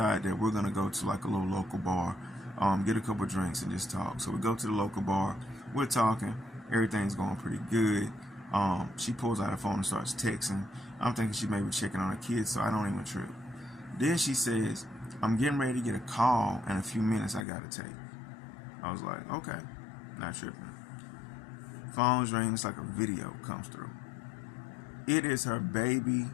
that we're going to go to like a little local bar, get a couple drinks and just talk. So we go to the local bar, we're talking, everything's going pretty good. She pulls out her phone and starts texting. I'm thinking she may be checking on her kids, so I don't even trip. Then she says, I'm getting ready to get a call in a few minutes I gotta take. I was like, okay, not tripping. Phone's ring, it's like a video comes through. It is her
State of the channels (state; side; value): drops out; right; at 17.4 s